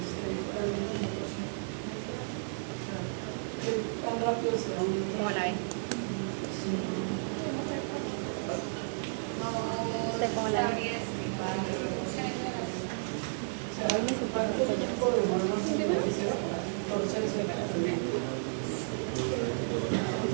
realmente tan rápido se da un ¿Cómo la ven? ¿Usted cómo la ve? ¿cuánto tiempo demora más o menos proceso?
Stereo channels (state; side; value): silent; left; digital silence